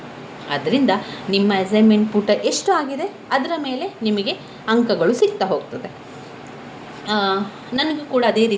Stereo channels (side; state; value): both; identical; correlation 1.00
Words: ಆದ್ದರಿಂದ ನಿಮ್ಮ ಅಸೈನ್ಮೆಂಟ್ ಪುಟ ಎಷ್ಟು ಆಗಿದೆ ಅದರ ಮೇಲೆ ನಿಮಗೆ ಅಂಕಗಳು ಸಿಗ್ತಾ ಹೋಗ್ತದೆ. ನನಗೂ ಕೂಡ ಅದೇ